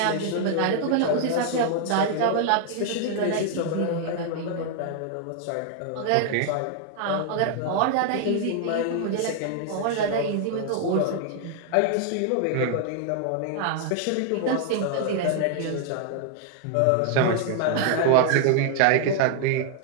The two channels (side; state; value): both; different; correlation 0.00